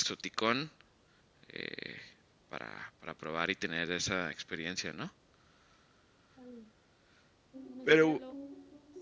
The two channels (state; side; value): identical; both; correlation 1.00